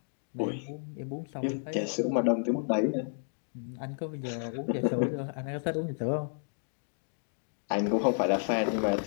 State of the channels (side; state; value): right; silent; digital silence